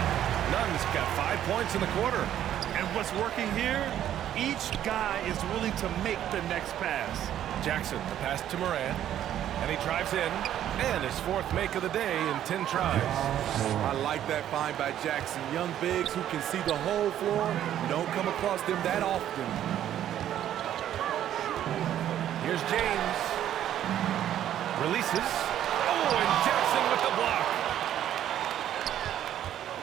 Nunn's got 5 points in the quarter. And what's working here? Each guy is willing to make the next pass. Jackson, the pass to Moran. And he drives in. And his 4th make of the day in 10 tries. I like that find by Jackson. Young bigs who can see the whole floor. You don't come across them that often. Here's James. Releases. Oh, and Jackson with the block.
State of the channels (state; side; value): quieter; left; 11.2 dB